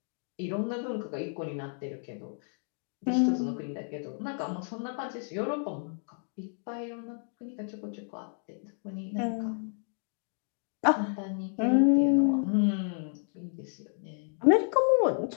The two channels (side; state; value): right; silent; 57 dB below the other